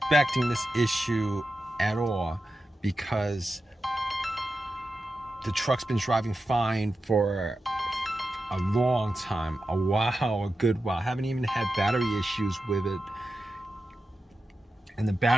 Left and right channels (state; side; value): normal; both; correlation 0.91